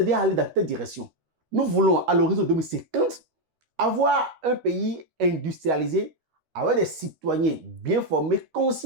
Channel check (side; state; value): left; late; 13 ms